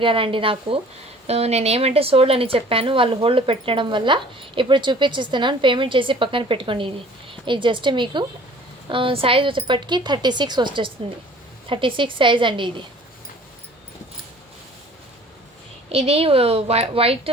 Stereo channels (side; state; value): both; normal; correlation 0.50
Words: నాకు. నేనేమంటే సోల్డ్ అని చెప్పాను, వాళ్ళు హోల్డ్ పెట్టడం వల్ల ఇప్పుడు చూపించిస్తున్నాను. పేమెంట్ చేసి పక్కన పెట్టుకోండి. ఇది జస్ట్ మీకు సైజ్ వచ్చేప్పటికి 36 వచ్చేస్తుంది. 36 సైజ్ అండి. ఇది వైట్